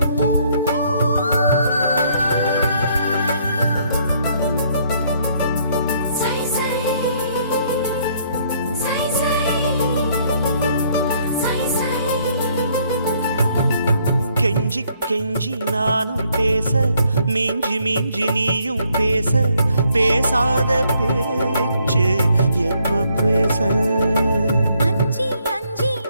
சை சை சை சை சை சை கெஞ்சி கெஞ்சி நானும் பேச மிஞ்சி மிஞ்சி நீயும் பேச பேசாத பேச்சு எப்ப பேச அஞ்சி அஞ்சி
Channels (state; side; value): inverted; both; correlation -0.68